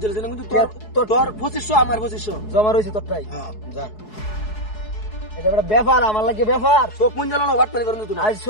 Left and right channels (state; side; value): late; right; 4.7 ms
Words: না কিন্তু তোর 2500 আমার 2500 জমা রইছে তোরটাই হ্যাঁ যা এটা বড় ব্যাপার আমার লাগে ব্যাপার চোখ মুঞ্জালো না ওয়াট করে তুই আজ